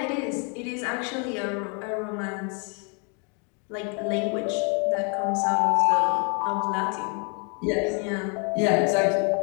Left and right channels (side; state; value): right; quieter; 36.7 dB